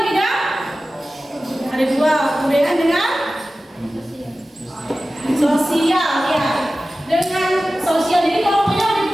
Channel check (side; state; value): both; normal; correlation 0.95